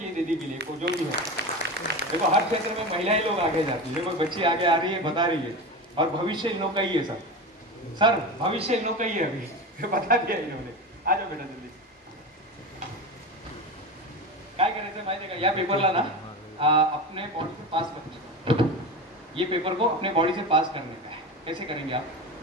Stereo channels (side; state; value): both; normal; correlation 0.24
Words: दीदी के लिए, जो भी है. देखो हर क्षेत्र में महिलाएं लोग आगे जाती है. देखो बच्ची आगे आ रही है, बता रही है. और भविष्य इन लोग का ही है सर भविष्य इन लोग का ही है. अभी बता दिया इन्होंने. आ जाओ बेटा जल्दी. काय करायचं माहिती आहे का? या पेपरला ना अपने बॉडी से पास करना. ये पेपर को अपने बॉडी से पास करने का है. कैसे करेंगे आप?